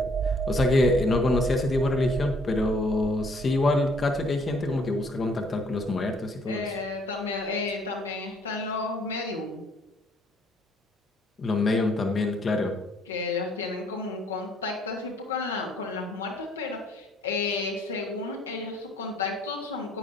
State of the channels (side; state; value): both; normal; correlation 0.63